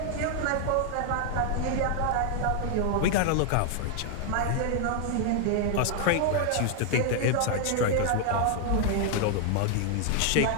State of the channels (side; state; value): both; different; correlation 0.00